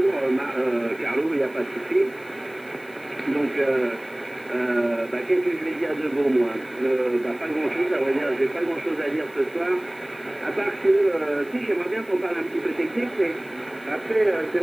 Carlo, il n'y a pas de souci. Donc, qu'est-ce que je vais dire de bon, moi? Pas grand-chose, à vrai dire, j'ai pas grand-chose à dire ce soir, à part que, si, j'aimerais bien qu'on parle un petit peu technique, mais après, c'est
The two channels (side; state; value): left; noise; hiss, 26 dB below the sound